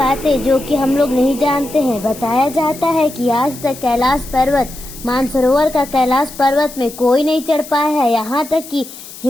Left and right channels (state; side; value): noise; left; hiss, 15 dB below the sound